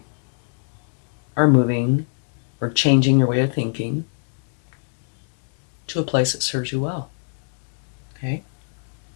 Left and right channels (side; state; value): right; silent; digital silence